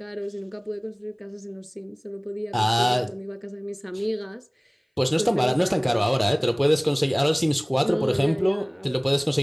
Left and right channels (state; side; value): identical; both; correlation 1.00